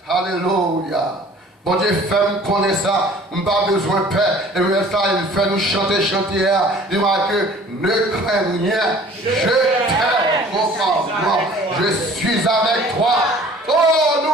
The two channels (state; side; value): normal; both; correlation 0.50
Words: alléluia, Bon Dieu, fais-moi connaître ça. On n'a pas besoin de paix. Et bien ça, il fait nous chanter. Il m'a dit, ne crains rien. Je t'aime. Je suis avec toi. Oh,